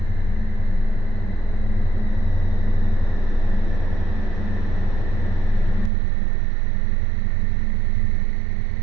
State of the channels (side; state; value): left; drops out; at 5.9 s